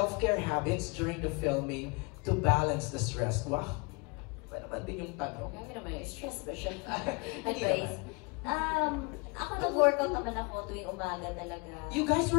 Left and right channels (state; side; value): quieter; right; 30.2 dB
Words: habits during the filming to balance the stress? Wow! Ba naman din yung tanong? Kaya naman, stress ba siya? Hindi Advice. Ako nag-workout naman ako tuwing umaga talaga. You guys